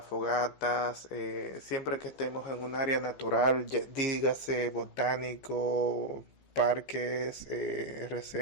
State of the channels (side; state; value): right; late; 15 ms